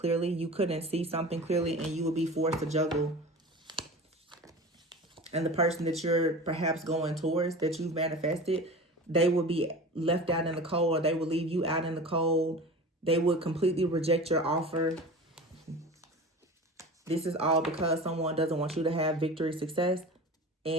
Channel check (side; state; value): both; normal; correlation 0.35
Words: You couldn't see something clearly, and you would be forced to juggle. And the person that you're perhaps going towards, that you've manifested, they would be left out in the cold, or they would leave you out in the cold. They would completely reject your offer. This is all because someone doesn't want you to have victory, success,